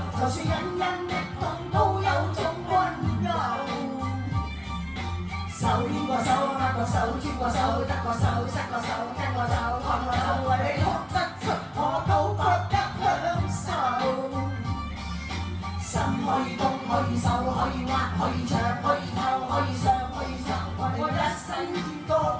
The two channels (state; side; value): identical; both; correlation 1.00